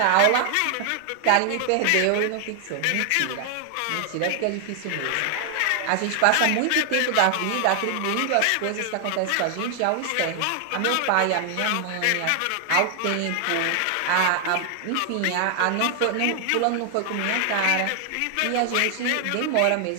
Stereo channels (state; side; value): different; both; correlation 0.00